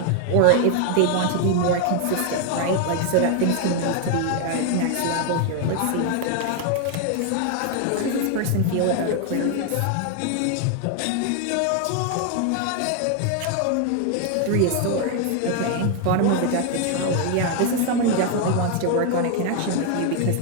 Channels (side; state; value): both; different; correlation 0.00